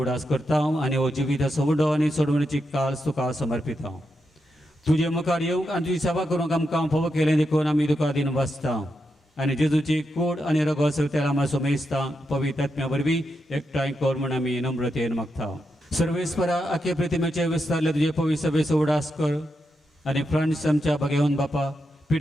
करता आनी हो जिविताचो उडो आनी सोडवणीची काल्स तुका समर्पिता. तुजे मुखार येवंक आनी तुजी सेवा करूंक आमकां फोव केलें देखून आमी तुका दिन वाचता आनी जेजूची कूड आनी रगत तेला मातसो मेजता पवित्र आत्म्या वरवीं एकठांय कर म्हूण आमी नम्रतेन मागता. सर्वेस्परा आखे प्रतिमेचे विस्तारले तुजे पवित्र सभेचो उडास कर आनी फ्रांस आमच्या भगेवन बापा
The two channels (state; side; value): normal; both; correlation 0.85